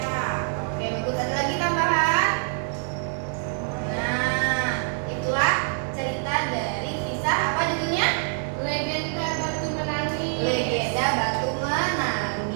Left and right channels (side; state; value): left; silent; 61 dB below the other